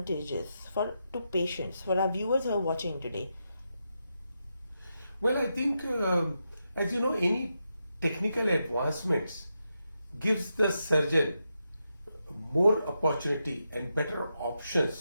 to patients, for our viewers who are watching today? Well, I think, as you know, any technical advancements gives the surgeon more opportunity and better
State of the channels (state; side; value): inverted; both; correlation -0.86